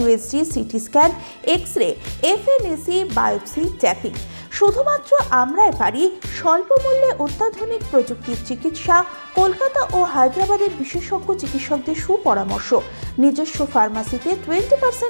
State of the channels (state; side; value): inverted; both; correlation -1.00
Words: CT scan, X-ray, FNAC, biopsy, tapping. শুধুমাত্র আমরাই পারি স্বল্প মূল্যে অত্যাধুনিক প্রযুক্তির চিকিৎসা। কলকাতা ও হায়দ্রাবাদের বিশেষজ্ঞ চিকিৎসকদের সুপরামর্শ, নিজস্ব ফার্মাসিতে